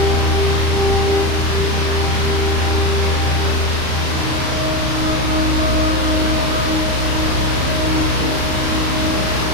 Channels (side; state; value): left; late; 35 ms